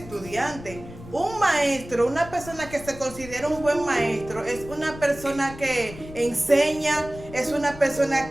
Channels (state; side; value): noise; left; rumble, 15 dB below the sound